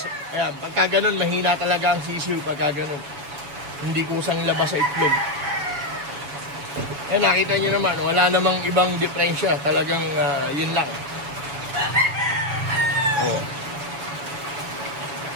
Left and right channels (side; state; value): left; late; 7.0 ms